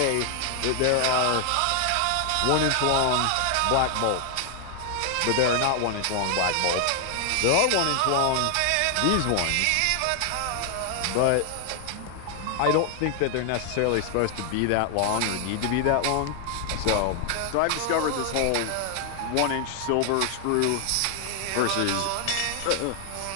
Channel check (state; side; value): different; both; correlation 0.00